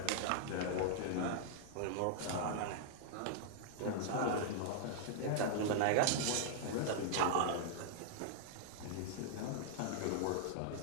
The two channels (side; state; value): both; different; correlation -0.01